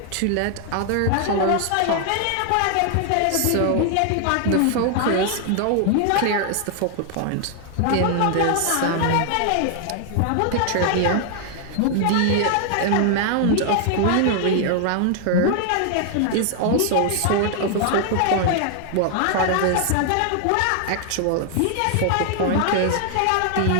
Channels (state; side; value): different; both; correlation 0.00